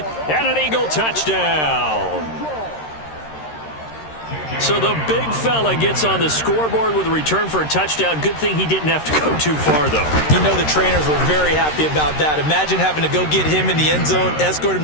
an Eagle touchdown. So the big fella gets on the scoreboard with a return for a touchdown. Good thing he didn't have to go too far, though. You know the trainers were very happy about that. Imagine having to go get him in the end zone, escort him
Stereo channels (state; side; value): late; right; 13 ms